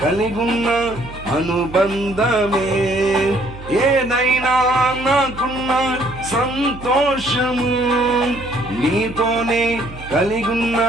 కలిగున్న అనుబంధమే ఏదైనా నాకున్న సంతోషము నీతోనే కలిగున్న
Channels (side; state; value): right; noise; hum, 15 dB below the sound